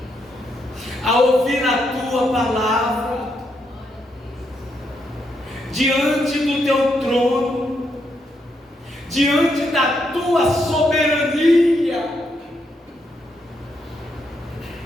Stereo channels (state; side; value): normal; both; correlation 0.79